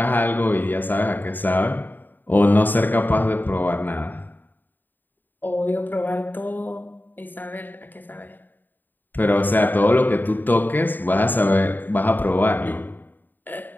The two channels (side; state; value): right; late; 0.090 ms